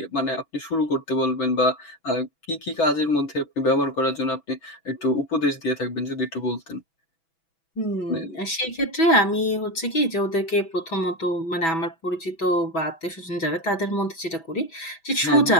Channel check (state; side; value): late; right; 6.1 ms